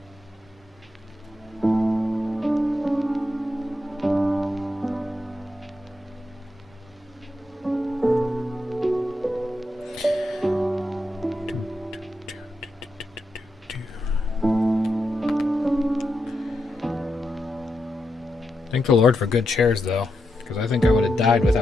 Thank the Lord for good chairs, though, because I think I would have died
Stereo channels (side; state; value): both; normal; correlation 0.85